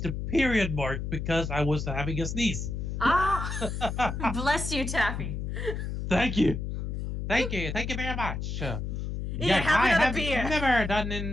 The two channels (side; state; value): left; noise; hum, 4 dB below the sound